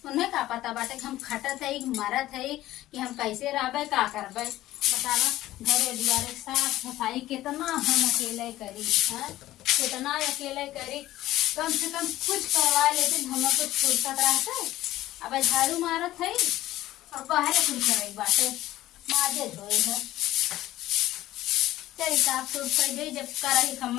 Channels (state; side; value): quieter; right; 15.2 dB